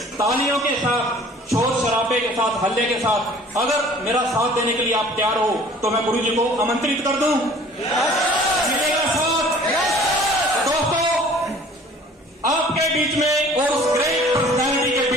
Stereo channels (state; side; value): normal; both; correlation 0.50